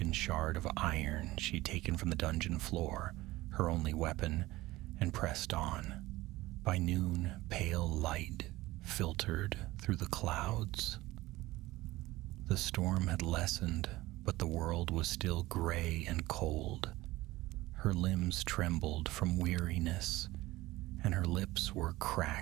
shard of iron she'd taken from the dungeon floor, her only weapon, and pressed on. By noon, pale light filtered through the clouds. The storm had lessened, but the world was still gray and cold. Her limbs trembled from weariness, and her lips were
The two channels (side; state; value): left; quieter; 18.4 dB